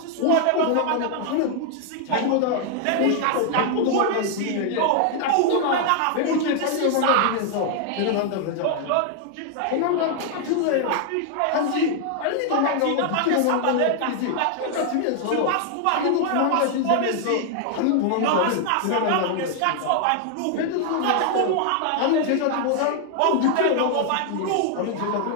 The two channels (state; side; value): different; both; correlation 0.00